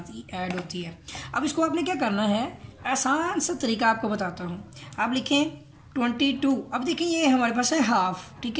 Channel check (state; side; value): identical; both; correlation 1.00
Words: ही ऐड होती है। अब इसको आपने क्या करना है, आसान सा तरीका आपको बताता हूँ। आप लिखें 22, अब देखिए ये हमारे पास है हाफ, ठीक